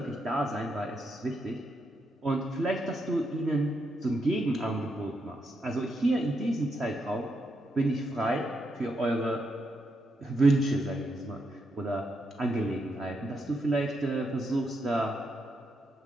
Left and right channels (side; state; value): both; normal; correlation 0.81